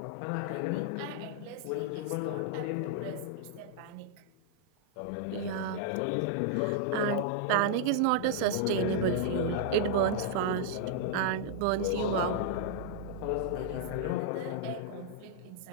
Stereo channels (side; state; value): both; different; correlation -0.01